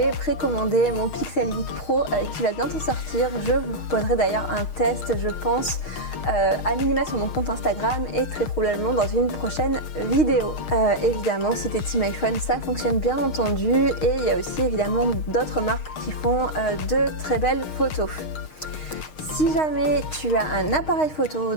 précommandé mon Pixel 8 Pro qui va bientôt sortir. Je vous proposerai d'ailleurs un test, je pense, à minima sur mon compte Instagram et très probablement dans une prochaine vidéo. Évidemment, si t'es team iPhone, ça fonctionne bien entendu et il y a aussi évidemment d'autres marques qui font de très belles photos. Si jamais tu as un appareil photo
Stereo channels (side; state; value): right; late; 6.4 ms